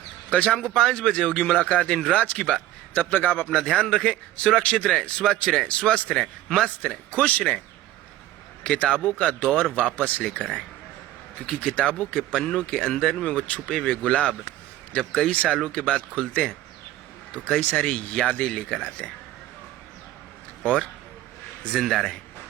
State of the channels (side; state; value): left; quieter; 14.6 dB